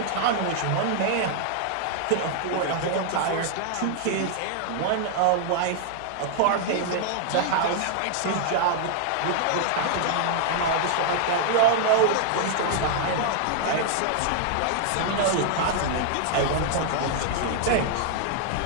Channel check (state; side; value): different; both; correlation -0.01